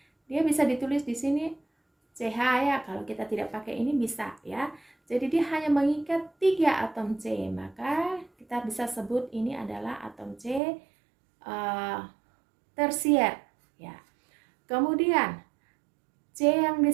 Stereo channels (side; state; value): left; drops out; at 10.6 s